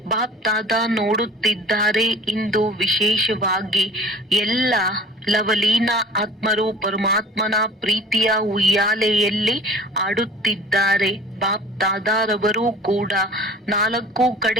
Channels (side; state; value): both; normal; correlation 0.45